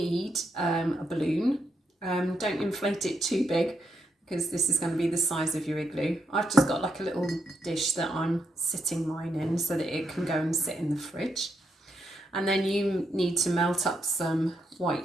a balloon. Don't inflate it too big because this is going to be the size of your igloo. I've just got like a little dish that I'm sitting mine in so that it can go and sit in the fridge. And then you need to melt up some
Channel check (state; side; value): normal; both; correlation 0.81